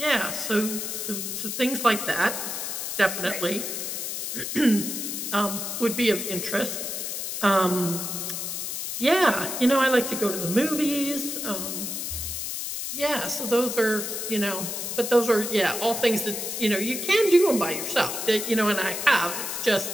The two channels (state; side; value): noise; left; hiss, 4 dB below the sound